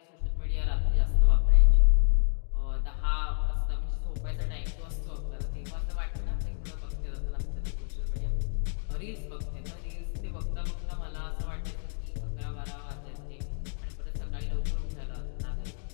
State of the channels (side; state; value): right; silent; 55 dB below the other